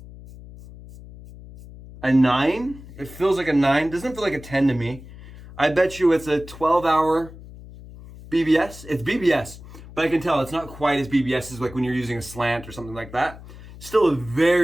a 9. It feels like a 9. Doesn't feel like a 10 to me. I bet you it's a 12-hour BBS. It's BBS, but I can tell it's not quite as BBS as like when you're using a slant or something like that. Still a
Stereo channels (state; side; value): noise; left; hum, 17 dB below the sound